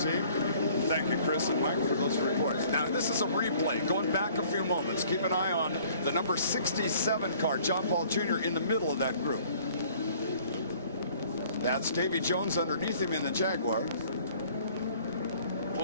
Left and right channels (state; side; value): inverted; both; correlation -0.55